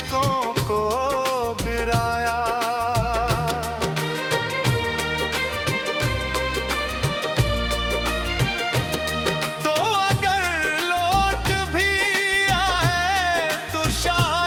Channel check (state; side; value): identical; both; correlation 1.00